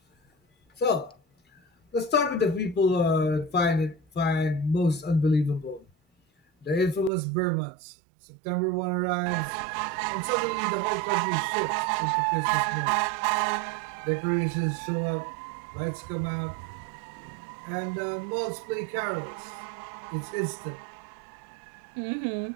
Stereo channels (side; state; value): left; drops out; at 7.1 s